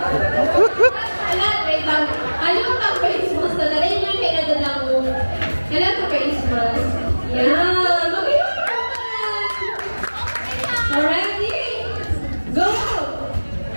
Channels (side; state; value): both; inverted; correlation -1.00